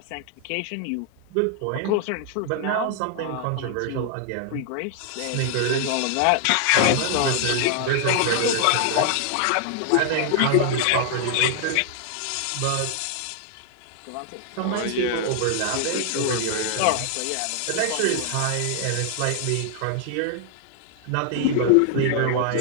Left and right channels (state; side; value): different; both; correlation 0.00